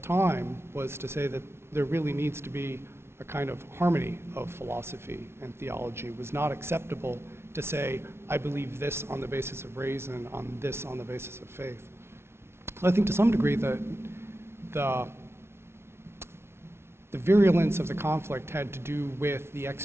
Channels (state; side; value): late; left; 0.12 ms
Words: was to say that there really needs to be a kind of harmony of philosophy and theology. It was not acceptable to say, I believe this on the basis of reason, on this on the basis of faith. So I think to some degree that the virulence of the conflict had to do with the